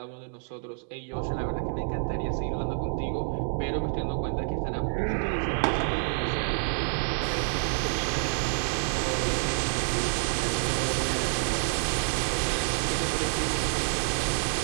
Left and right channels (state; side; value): silent; left; 59 dB below the other